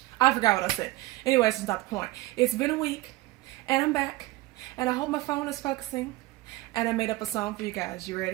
I forgot what I said. Anyways, it's not the point. It's been a week, and I'm back, and I hope my phone is focusing, and I made up a song for you guys. You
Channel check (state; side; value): quieter; left; 19.4 dB